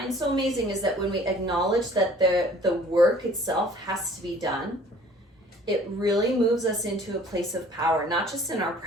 so amazing is that when we acknowledge that the work itself has to be done, it really moves us into a place of power, not just in our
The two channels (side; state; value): both; normal; correlation 0.52